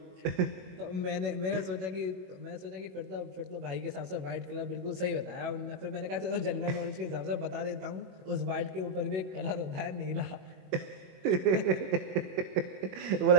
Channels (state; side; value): late; left; 21 ms